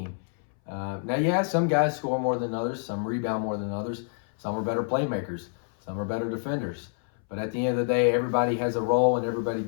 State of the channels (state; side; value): silent; right; 60 dB below the other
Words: Now, some guys score more than others, some rebound more than others, some are better playmakers, some are better defenders. But at the end of the day, everybody has a role and everybody